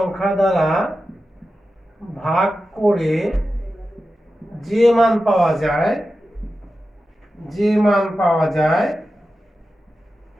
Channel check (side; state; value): both; normal; correlation 0.92